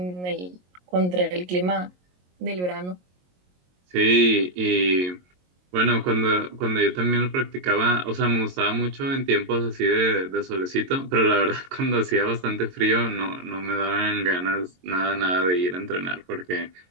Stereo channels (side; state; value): left; late; 22 ms